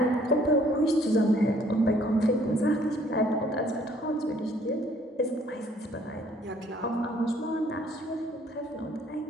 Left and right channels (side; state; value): both; normal; correlation 0.61